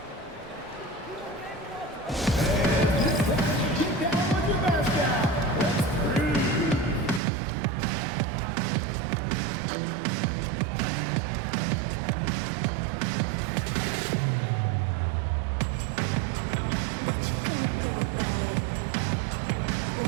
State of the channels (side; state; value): left; drops out; at 7.2 s